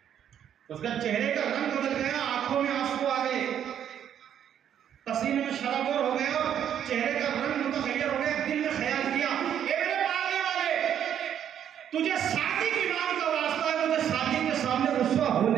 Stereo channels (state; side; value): quieter; left; 9.5 dB